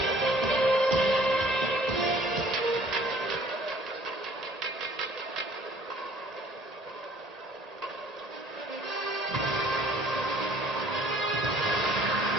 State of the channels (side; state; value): both; normal; correlation 0.55